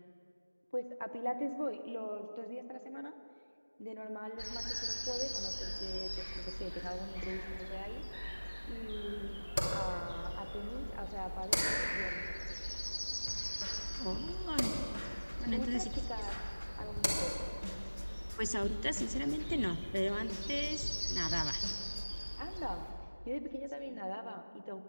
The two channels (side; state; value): both; inverted; correlation -1.00